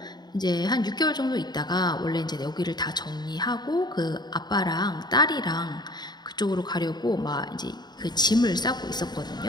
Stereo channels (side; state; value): right; late; 0.20 ms